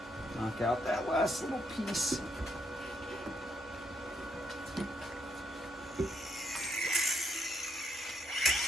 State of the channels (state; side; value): normal; both; correlation 0.76